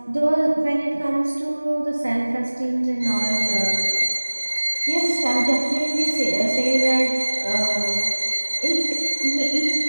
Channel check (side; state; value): both; inverted; correlation -1.00